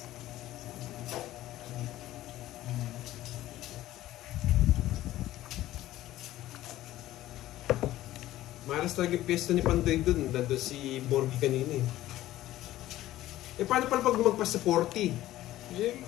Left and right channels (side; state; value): right; quieter; 14.9 dB